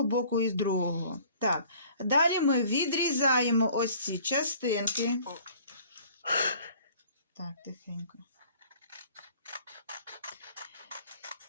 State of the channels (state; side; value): inverted; both; correlation -0.52